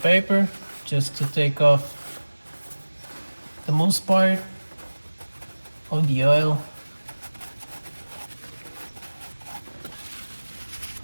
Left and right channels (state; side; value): inverted; both; correlation -1.00